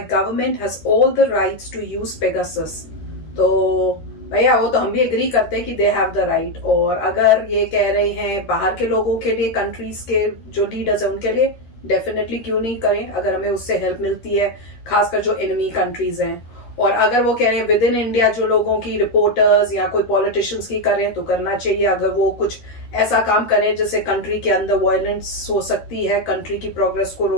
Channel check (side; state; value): right; late; 13 ms